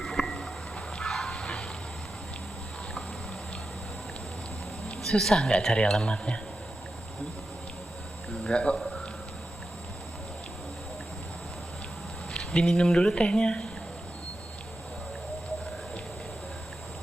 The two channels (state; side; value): normal; both; correlation 0.90